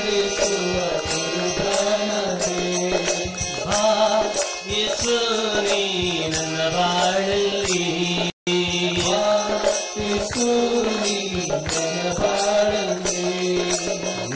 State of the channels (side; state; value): both; identical; correlation 1.00